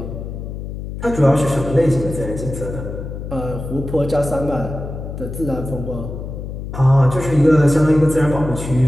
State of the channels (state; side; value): noise; left; hum, 8 dB below the sound